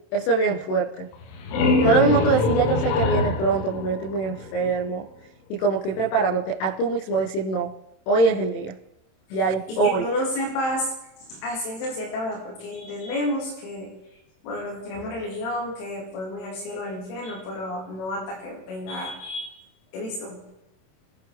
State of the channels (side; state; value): right; late; 27 ms